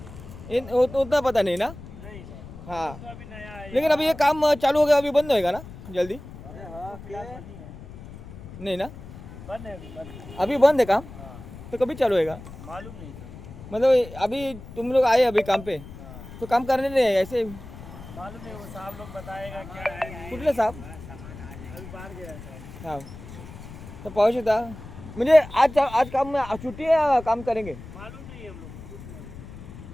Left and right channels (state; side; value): noise; left; rumble, 14 dB below the sound